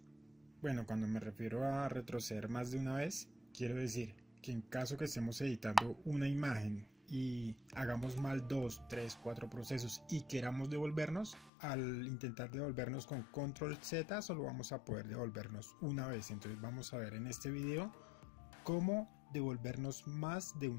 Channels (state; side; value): drops out; right; at 11.5 s